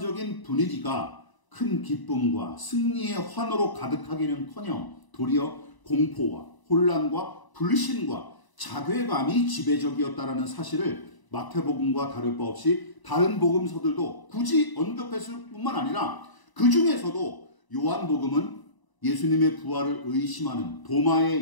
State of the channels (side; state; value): right; late; 1.0 ms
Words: 분위기가 큰 기쁨과 승리의 환호로 가득하기는커녕 도리어 공포와 혼란과 불신과 자괴감이 지배적이었다라는 사실을 마태복음과 다를 바 없이 다른 복음서들도 굳이 언급했을 뿐만 아니라 그 중에서도 요한복음은 예수님의 부활을 의심하는